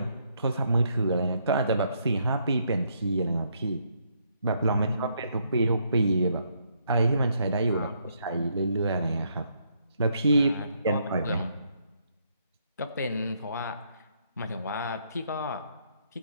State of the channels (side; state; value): both; inverted; correlation -0.73